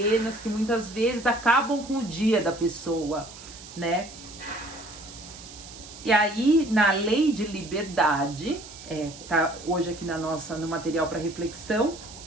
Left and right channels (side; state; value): right; noise; hiss, 16 dB below the sound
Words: que muitas vezes acabam com o dia da pessoa, né? E aí, na lei de liberdade, tá hoje aqui no material para reflexão,